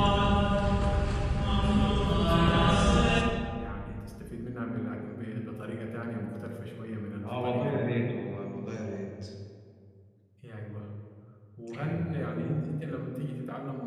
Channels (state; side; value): identical; both; correlation 1.00